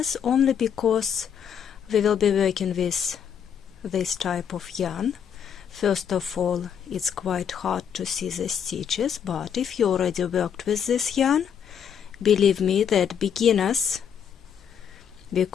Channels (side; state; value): right; quieter; 8.1 dB